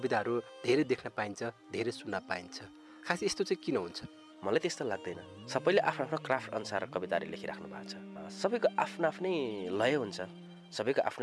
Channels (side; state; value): both; identical; correlation 1.00